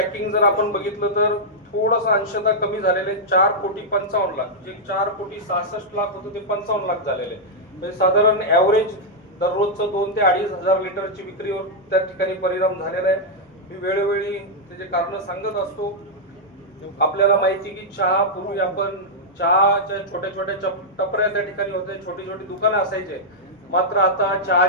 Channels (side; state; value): both; normal; correlation -0.06